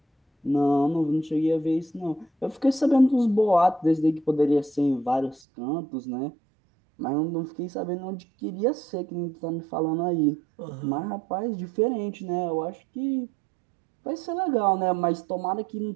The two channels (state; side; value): drops out; left; at 5.4 s